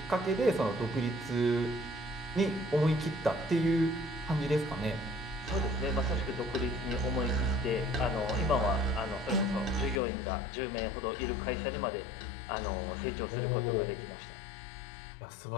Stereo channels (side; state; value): right; drops out; at 10.0 s